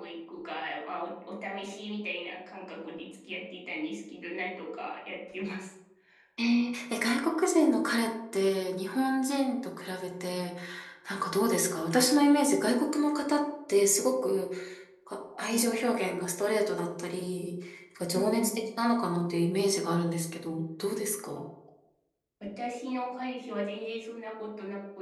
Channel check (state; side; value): identical; both; correlation 1.00